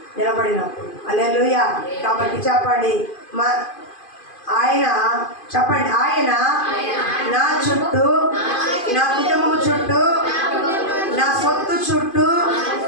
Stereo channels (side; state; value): right; late; 2.5 ms